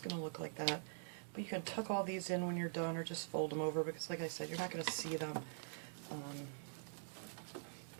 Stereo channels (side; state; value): left; silent; digital silence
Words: going to look like that. But you can tuck all these in when you're done, or just fold them over, because like I said, you're not going to see them.